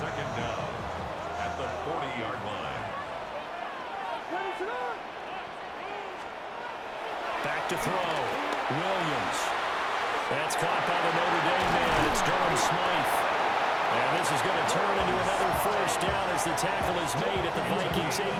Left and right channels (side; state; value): both; identical; correlation 1.00